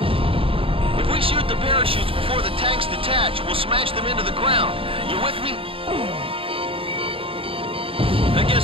If we shoot the parachutes before the tanks detach, we'll smash them into the ground. You with me? I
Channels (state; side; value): late; left; 0.27 ms